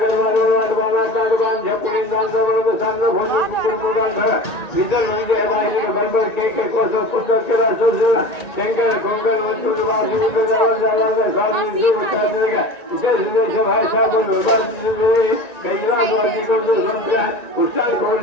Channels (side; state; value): right; late; 1.9 ms